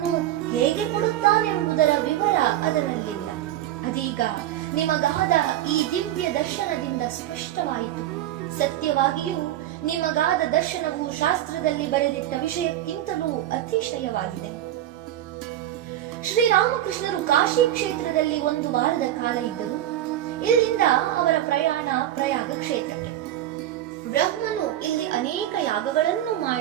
ಹೇಗೆ ಕೊಡುತ್ತಾನೆಂಬುದರ ವಿವರ ಅದರಲ್ಲಿಲ್ಲ. ಅದೀಗ ನಿಮಗಾದ ಈ ದಿವ್ಯ ದರ್ಶನದಿಂದ ಸ್ಪಷ್ಟವಾಯಿತು. ಸತ್ಯವಾಗಿಯೂ ನಿಮಗಾದ ದರ್ಶನವು ಶಾಸ್ತ್ರದಲ್ಲಿ ಬರೆದಿಟ್ಟ ವಿಷಯಕ್ಕಿಂತಲೂ ಅತಿಶಯವಾಗಿದೆ. ಶ್ರೀರಾಮಕೃಷ್ಣರು ಕಾಶಿ ಕ್ಷೇತ್ರದಲ್ಲಿ 1 ವಾರದ ಕಾಲ ಇದ್ದರು. ಇಲ್ಲಿಂದ ಅವರ ಪ್ರಯಾಣ ಪ್ರಯಾಗ ಕ್ಷೇತ್ರಕ್ಕೆ. ಬ್ರಹ್ಮನು ಇಲ್ಲಿ ಅನೇಕ ಯಾಗಗಳನ್ನು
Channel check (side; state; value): left; quieter; 12.6 dB